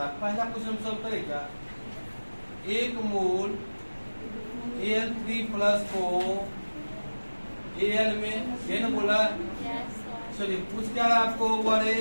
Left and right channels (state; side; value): inverted; both; correlation -1.00